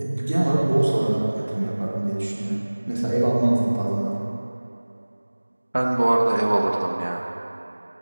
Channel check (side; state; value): both; inverted; correlation -1.00